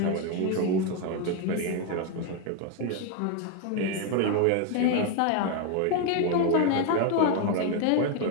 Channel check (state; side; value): different; both; correlation 0.01